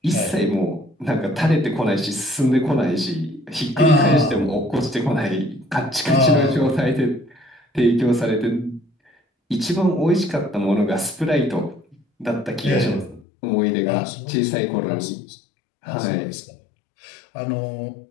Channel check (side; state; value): right; drops out; at 13.2 s